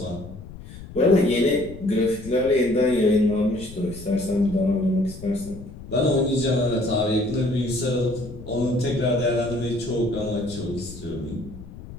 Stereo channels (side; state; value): left; noise; rumble, 15 dB below the sound